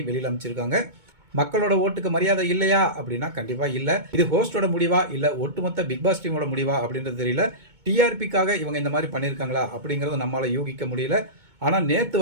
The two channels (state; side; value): late; left; 2.2 ms